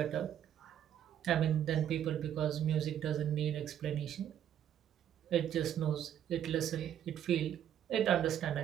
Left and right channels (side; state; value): left; quieter; 10.1 dB